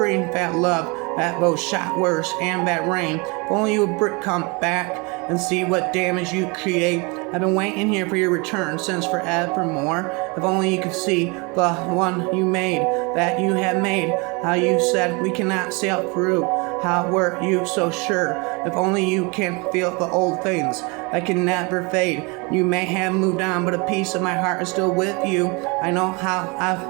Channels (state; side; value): quieter; left; 29.2 dB